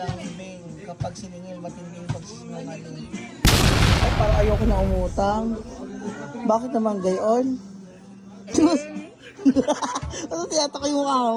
Kapag siningil, matinding pagsisinungaling. Ay, parang ayoko na umutang. Bakit naman gayon? Ano tiyatak yung mukha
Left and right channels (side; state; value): both; identical; correlation 1.00